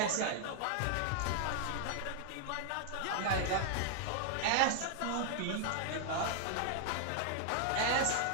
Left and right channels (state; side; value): different; both; correlation 0.00